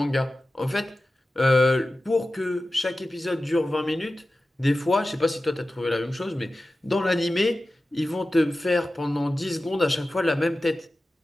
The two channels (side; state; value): both; normal; correlation 0.95